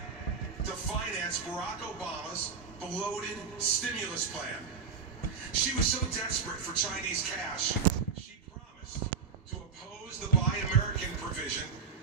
to finance Barack Obama's bloated stimulus plan. She was so desperate for Chinese cash, she promised to oppose the Buy American provision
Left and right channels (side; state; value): left; quieter; 6.1 dB